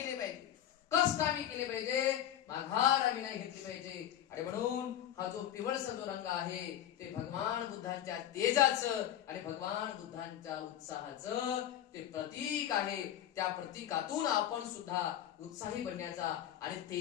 पाहिजे, कष्ट आम्ही केले पाहिजे, माघार आम्ही नाही घेतली पाहिजे. आणि म्हणून हा जो पिवळसा जो रंग आहे ते भगवान बुद्धांच्या तेजाचं आणि भगवान बुद्धांच्या उत्साहाचं ते प्रतीक आहे. त्या प्रतीकातून आपण सुद्धा उत्साही बनण्याचा आणि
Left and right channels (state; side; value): quieter; right; 11.2 dB